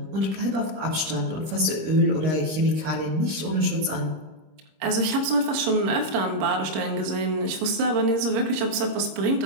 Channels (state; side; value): late; left; 26 ms